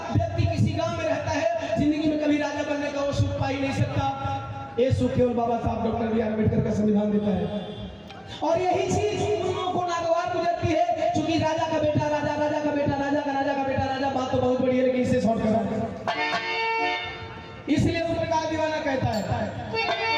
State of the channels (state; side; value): identical; both; correlation 1.00